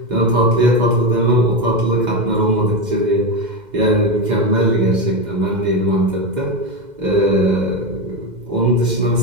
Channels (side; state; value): left; late; 2.1 ms